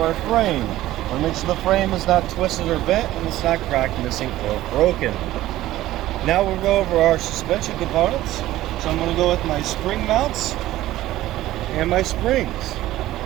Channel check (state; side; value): quieter; left; 15.3 dB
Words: our frame. I want to make sure the frame is not twisted or bent and it's not cracked, missing, or broken. Now we'll go over our suspension components. So I'm going to go with my spring mounts and my springs.